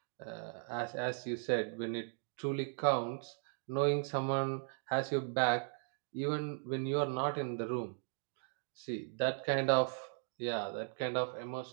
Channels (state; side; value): silent; left; 53 dB below the other